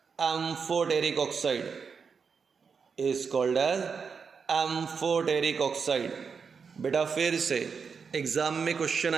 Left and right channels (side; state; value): left; quieter; 5.8 dB